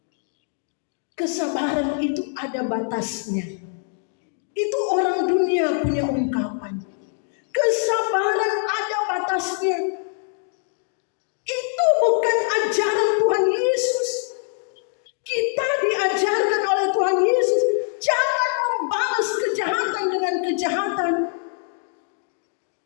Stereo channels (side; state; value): right; silent; 63 dB below the other